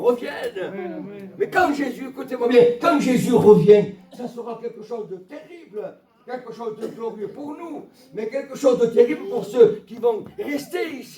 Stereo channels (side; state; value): both; identical; correlation 1.00